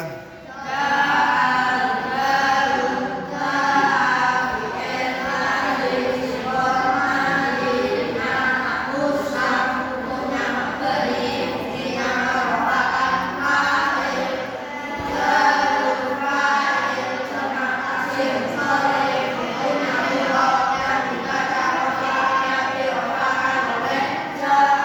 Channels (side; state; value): both; identical; correlation 1.00